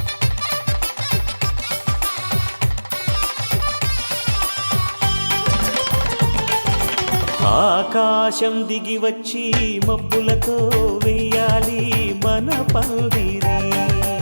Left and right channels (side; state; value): both; inverted; correlation -1.00